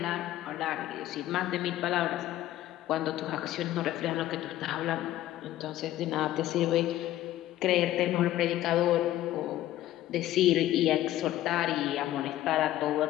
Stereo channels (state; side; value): quieter; right; 14.1 dB